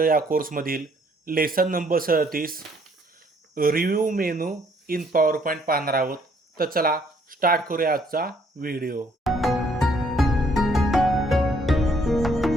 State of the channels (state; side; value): normal; both; correlation 0.65